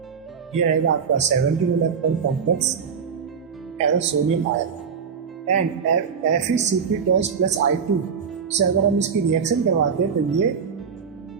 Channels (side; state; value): left; quieter; 6.5 dB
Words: ये रहेगा आपका 17 electron complex ferrocenium ion and FeCp+I2 से अगर हम इसकी रिएक्शन करवाते हैं तो ये